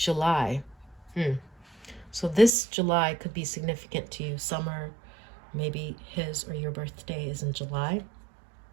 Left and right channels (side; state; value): left; drops out; at 2.5 s